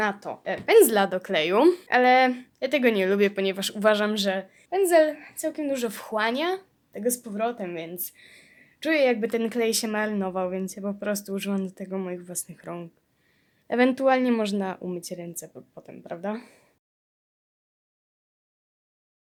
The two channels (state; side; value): identical; both; correlation 1.00